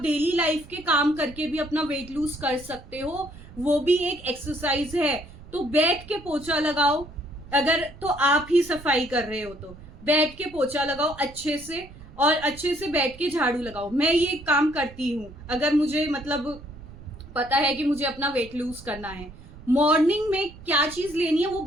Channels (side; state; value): right; noise; rumble, 19 dB below the sound